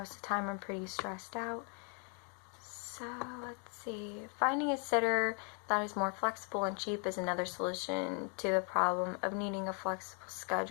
of the time I'm pretty stressed out. So let's see. Finding a sitter that is more flexible and cheap is another solution to the problem of needing a flexible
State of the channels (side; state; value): right; quieter; 39.1 dB